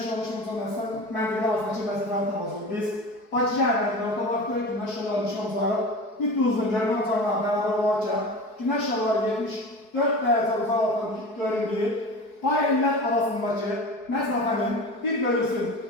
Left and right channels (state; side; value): late; right; 4.7 ms